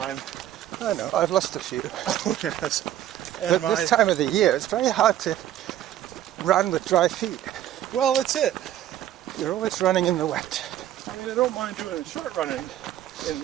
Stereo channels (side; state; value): left; quieter; 12.2 dB